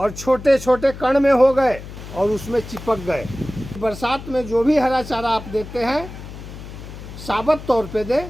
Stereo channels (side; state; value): left; noise; hum, 13 dB below the sound